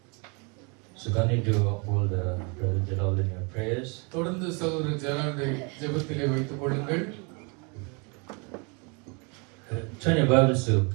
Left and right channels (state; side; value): quieter; left; 32.6 dB